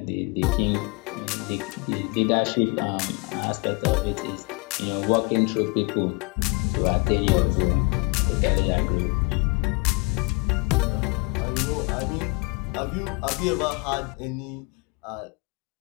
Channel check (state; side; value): quieter; right; 30.4 dB